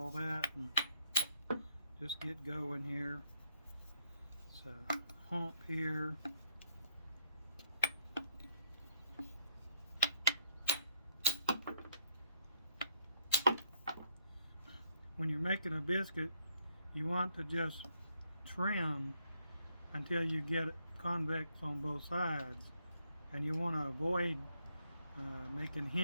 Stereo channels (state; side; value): inverted; both; correlation -0.70